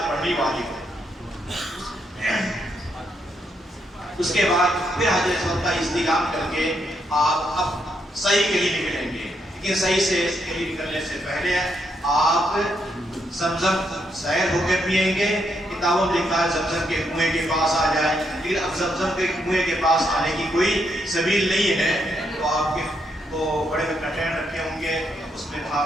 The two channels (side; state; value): both; normal; correlation 0.78